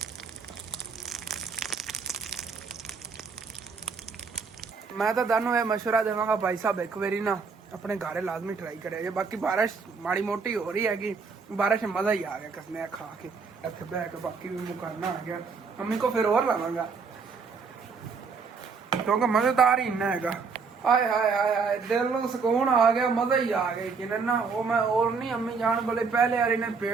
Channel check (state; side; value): quieter; left; 5.1 dB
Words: मैं तो ਤੁਹਾਨੂੰ ਇਹ ਮਸ਼ਵਰਾ ਦੇਵਾਂਗਾ ਭਾਈ ਸਾਹਿਬ ਇੱਕ ਵਾਰੀ ਨਾ ਆਪਣੇ ਘਰੇ ਲਾਜ਼ਮੀ ਟਰਾਈ ਕਰਿਆ ਜੇ। ਬਾਕੀ ਬਾਰਿਸ਼ ਮਾੜੀ ਮੋਟੀ ਹੋ ਰਹੀ ਹੈਗੀ, ਬਾਰਿਸ਼ ਮਜ਼ਾ ਹੀ ਆ ਗਿਆ ਕਸਮੇ ਖਾ ਕੇ ਇੱਥੇ ਬਹਿ ਕੇ। ਬਾਕੀ ਵੀ ਮੁਕਾਨਾ ਆ ਗਿਆ, ਮੰਮੀ ਕੋ ਫਿਰ ਹੋਰ ਲਾਵਾਂਗਾ ਕਿਉਂਕਿ ਮਜ਼ੇਦਾਰ ਹੀ ਇੰਨਾ ਹੈਗਾ। ਆਏ ਹਾਏ ਹਾਏ ਹਾਏ ਦਿਲ ਨੂੰ ਸਕੂਨ ਆ ਗਿਆ, ਮਜ਼ਾ ਹੀ ਆ ਗਿਆ ਕਿ ਨਾ। ਉਹ ਮੈਂ ਹੋਰ ਨਹੀਂ ਅੰਮੀ ਜਾਣ ਕੋਲੇ ਪਹਿਲੇ ਵਾਰੀ ਨੇ